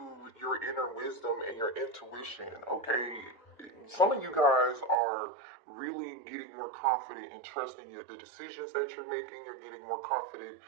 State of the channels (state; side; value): drops out; left; at 5.0 s